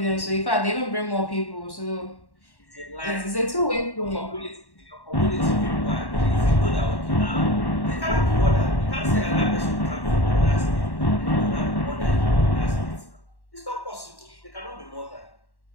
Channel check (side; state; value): right; late; 1.1 ms